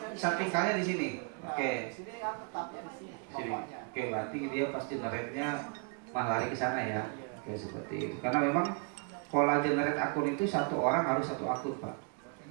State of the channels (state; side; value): quieter; left; 35.6 dB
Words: Sampingkalnya di sini. Oke. Di sini kan tetapnya di sini. Sini. Oke, berarti dia pasti generate-nya malah lari ke sana ya. Oke, seperti itu. Karena memang pola generate akun itu satu orang harus satu akun, Pak.